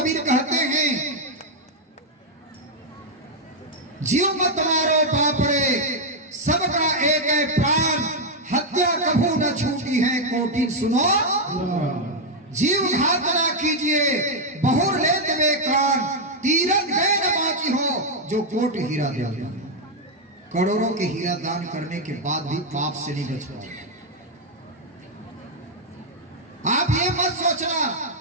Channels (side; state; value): both; normal; correlation -0.01